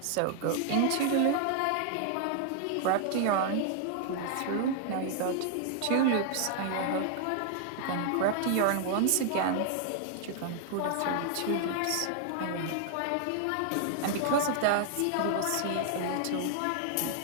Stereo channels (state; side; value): different; both; correlation 0.00